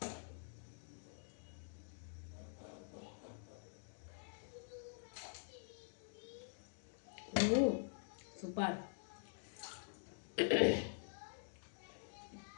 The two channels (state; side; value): silent; right; digital silence